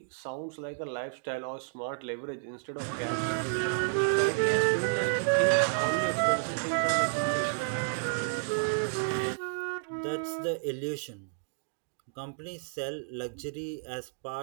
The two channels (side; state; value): left; silent; digital silence